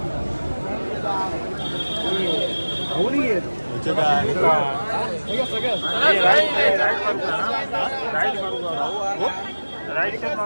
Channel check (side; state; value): both; inverted; correlation -1.00